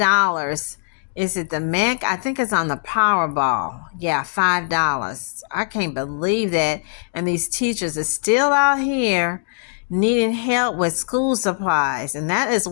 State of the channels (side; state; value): right; silent; digital silence